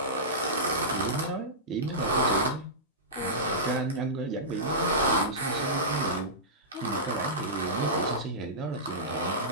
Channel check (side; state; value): both; normal; correlation -0.17